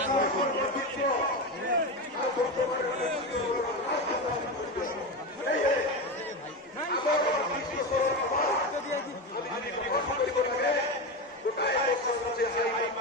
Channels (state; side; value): normal; both; correlation 0.18